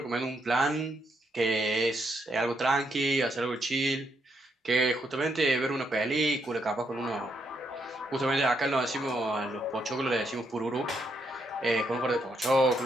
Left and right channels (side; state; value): both; normal; correlation 0.77